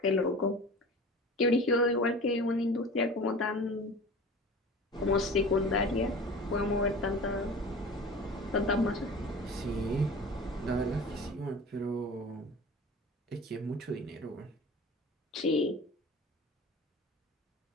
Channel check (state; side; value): normal; both; correlation 0.38